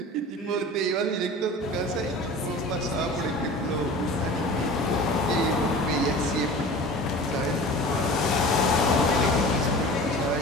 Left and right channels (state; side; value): normal; both; correlation 0.39